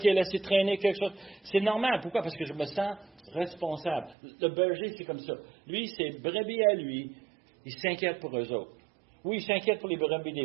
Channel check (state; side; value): drops out; left; at 4.2 s